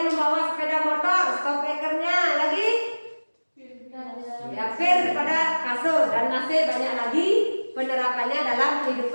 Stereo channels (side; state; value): both; inverted; correlation -1.00